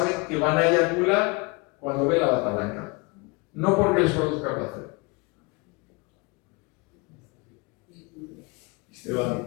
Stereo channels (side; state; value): right; quieter; 28.0 dB